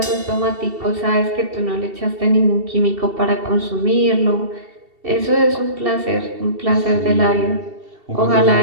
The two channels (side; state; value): left; late; 2.7 ms